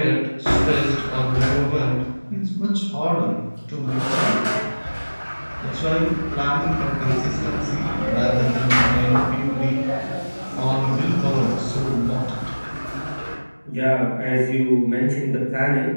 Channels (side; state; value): both; inverted; correlation -1.00